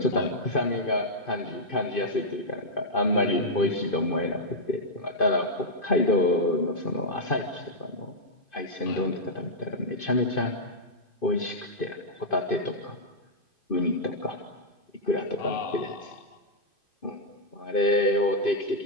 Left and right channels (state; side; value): late; right; 2.5 ms